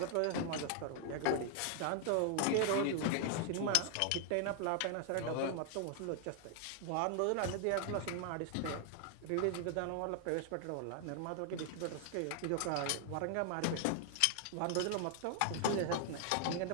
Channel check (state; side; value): different; both; correlation 0.00